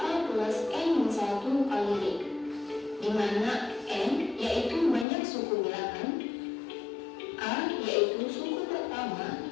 plus n min 1 kali D, di mana n yaitu banyak suku bilangan, A yaitu suku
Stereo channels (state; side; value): drops out; right; at 5.1 s